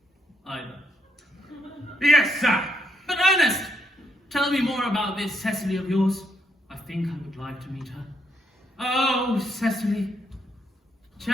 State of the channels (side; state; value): both; normal; correlation 0.75